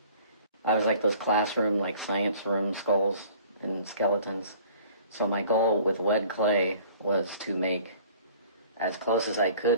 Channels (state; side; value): inverted; both; correlation -0.51